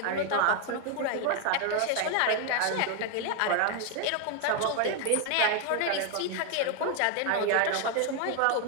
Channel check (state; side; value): different; both; correlation 0.00